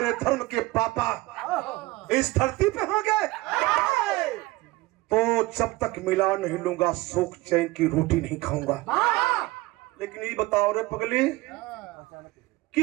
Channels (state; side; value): quieter; left; 20.4 dB